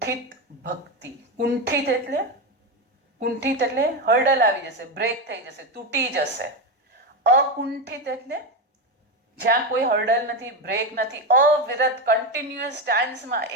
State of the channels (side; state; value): both; normal; correlation 0.13